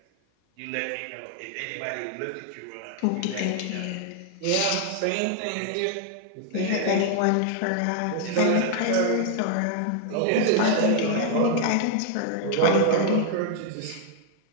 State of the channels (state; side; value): different; both; correlation 0.00